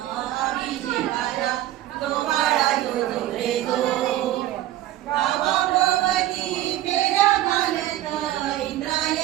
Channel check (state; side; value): quieter; left; 14.1 dB